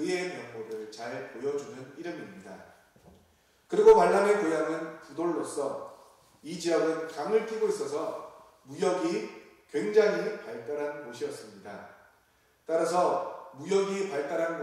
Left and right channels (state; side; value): identical; both; correlation 1.00